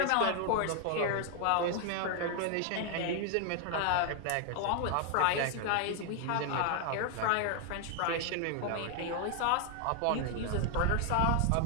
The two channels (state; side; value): different; both; correlation 0.00